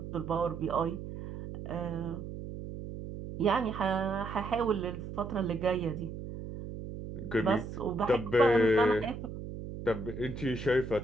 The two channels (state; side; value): noise; right; hum, 9 dB below the sound